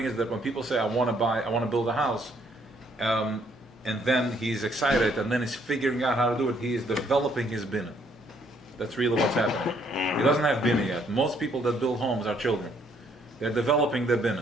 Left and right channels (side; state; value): both; normal; correlation 0.67